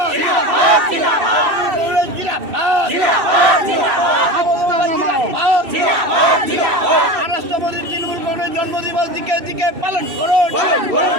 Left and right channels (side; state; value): left; late; 2.7 ms